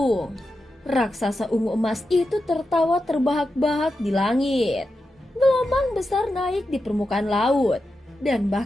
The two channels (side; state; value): both; normal; correlation 0.89